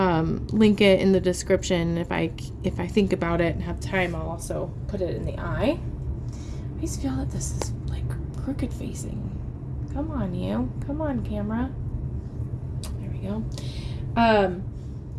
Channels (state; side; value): identical; both; correlation 1.00